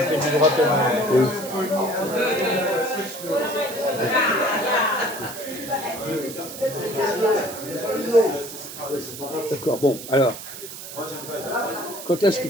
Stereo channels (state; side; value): noise; right; hiss, 11 dB below the sound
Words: du droit pénal. Oui. D'accord, bon, alors, quand est-ce que